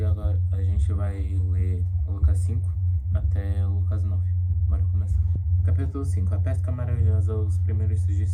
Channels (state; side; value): identical; both; correlation 1.00